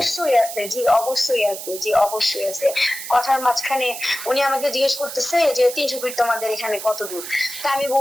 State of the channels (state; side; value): noise; right; hiss, 9 dB below the sound